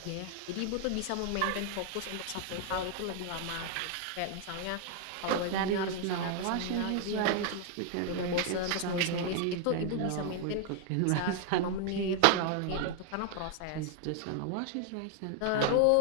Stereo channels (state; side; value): different; both; correlation 0.00